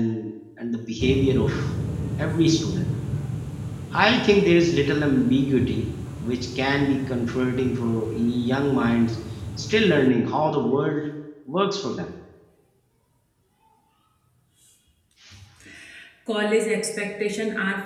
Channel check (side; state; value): both; identical; correlation 1.00